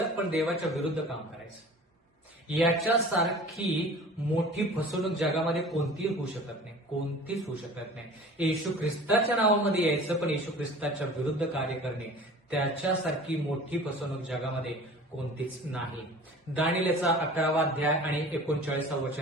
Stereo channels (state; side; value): normal; both; correlation 0.43